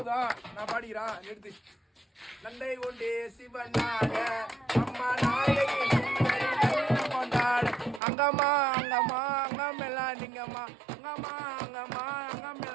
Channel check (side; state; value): left; drops out; at 8.0 s